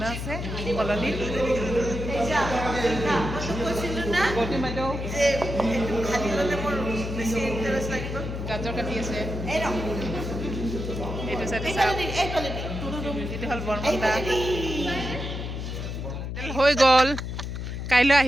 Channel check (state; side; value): noise; left; hum, 5 dB below the sound